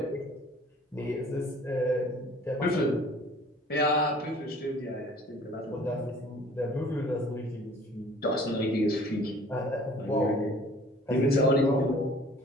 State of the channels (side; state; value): both; normal; correlation 0.51